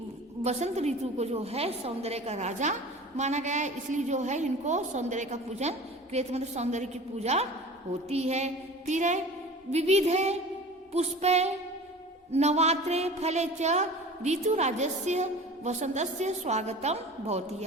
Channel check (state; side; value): normal; both; correlation 0.39